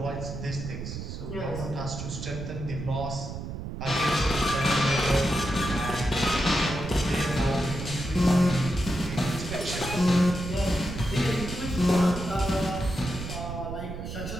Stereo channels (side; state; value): right; noise; rumble, 7 dB below the sound